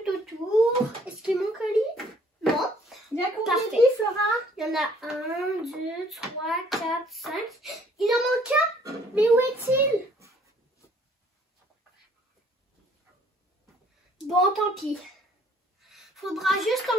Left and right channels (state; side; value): normal; both; correlation 0.60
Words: autour. Est-ce qu'il manque un lit? Non. Il y a combien Parfait. de lits, Flora? Il y en a 1, 2, 3, 4, 5. Il en manque un. Mais où est-il? Bon, tant pis. Faudra juste